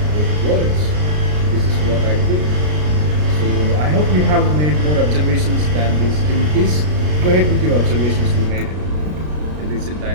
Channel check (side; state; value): left; late; 33 ms